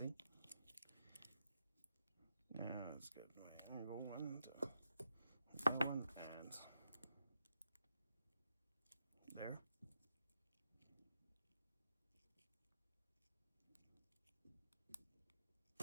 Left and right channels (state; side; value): inverted; both; correlation -0.85